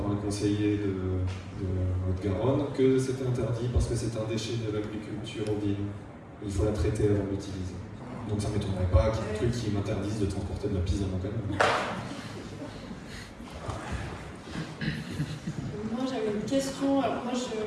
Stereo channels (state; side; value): identical; both; correlation 1.00